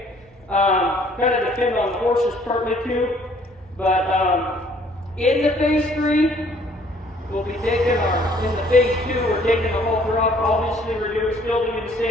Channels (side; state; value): both; normal; correlation 0.60